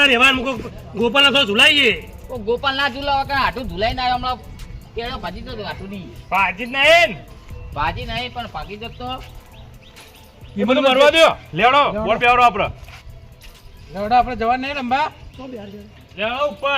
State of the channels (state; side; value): identical; both; correlation 1.00